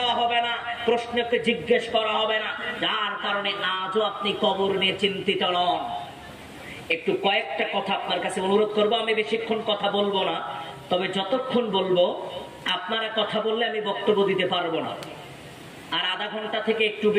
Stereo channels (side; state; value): both; identical; correlation 1.00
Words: হবে না, প্রশ্নকে জিজ্ঞেস করা হবে না, যার কারণে আজও আপনি কবর নিয়ে চিন্তিত নন? একটু কয়েকটা কথা আপনার কাছে অনুরোধ করবো, আমি বেশিক্ষণ কথা বলবো না, তবে যতক্ষণ বলবো আপনারা কথা বললে আমি বক্তব্য দিতে পারবো না, আর আধা ঘন্টা থেকে একটু